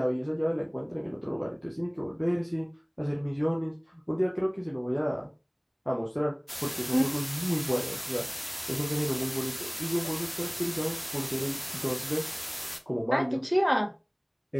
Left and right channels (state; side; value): identical; both; correlation 1.00